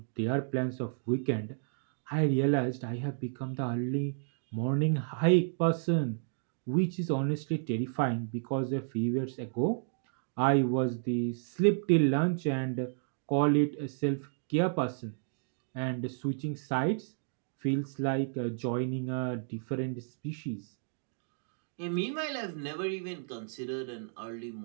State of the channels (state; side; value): silent; left; digital silence